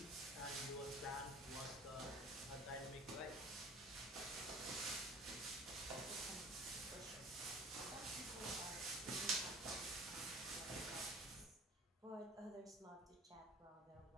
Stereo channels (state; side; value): normal; both; correlation 0.46